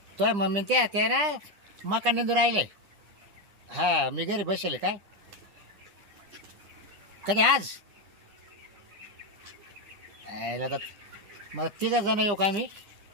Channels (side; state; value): left; late; 9.9 ms